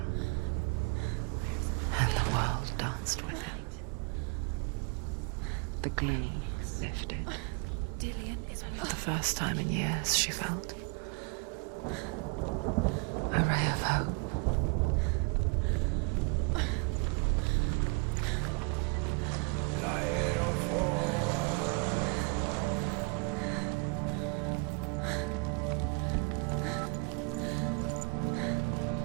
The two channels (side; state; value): left; quieter; 31.5 dB